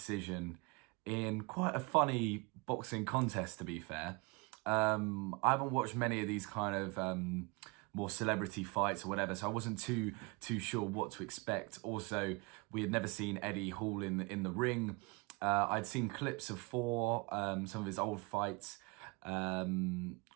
in quite a funny boxing contest, to be fair. I haven't watched many of these kind of more celebrity fights or whatever, so I wasn't too sure what to expect. Also, we had never seen Eddie Hall in the ring. I'd seen clips of Thor, some of his old fights, or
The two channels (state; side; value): quieter; left; 28.5 dB